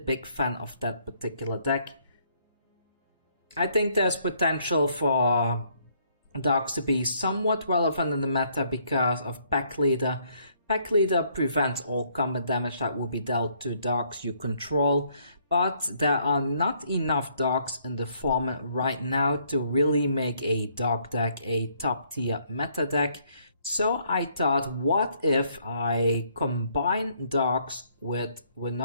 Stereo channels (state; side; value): inverted; both; correlation -0.68